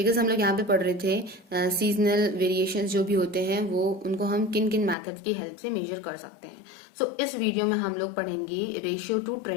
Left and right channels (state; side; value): drops out; right; at 5.0 s